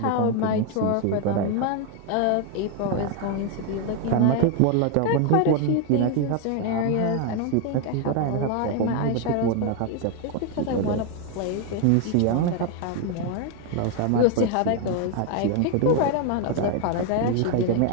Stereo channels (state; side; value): different; both; correlation 0.01